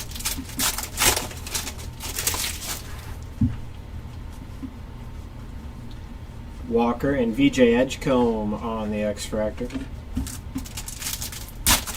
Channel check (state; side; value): identical; both; correlation 1.00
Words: Walker and VJ Edgecombe on the X-Fractor.